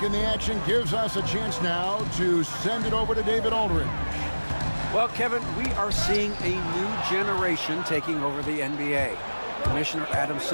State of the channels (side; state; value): both; inverted; correlation -1.00